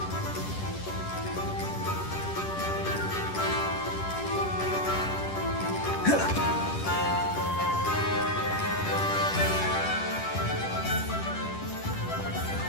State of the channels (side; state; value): right; late; 10 ms